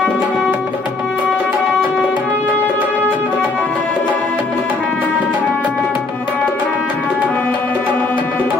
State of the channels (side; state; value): right; quieter; 3.5 dB